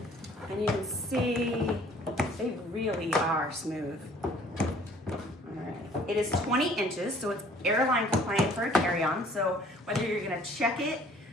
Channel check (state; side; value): normal; both; correlation 0.55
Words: and you can see they really are smooth. All right. It is 20 inches, so it's airline compliant for a carry-on. So whether you're gonna check it